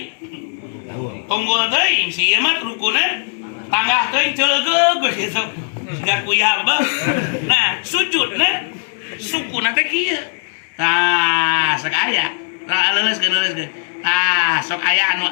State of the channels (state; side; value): silent; right; 60 dB below the other